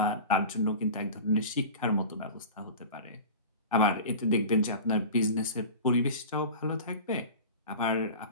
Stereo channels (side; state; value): both; inverted; correlation -0.34